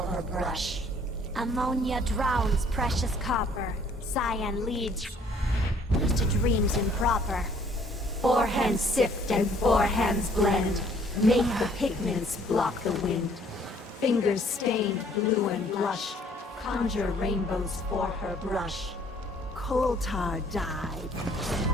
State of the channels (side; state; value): both; normal; correlation 0.59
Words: brush. Ammonia drowns precious copper, cyan leads to dreams improper. 4 hands sift and 4 hands blend, make the pigments block the wind. Fingers stained blue and blush, conjure rainbows for her brush. Coal tar died.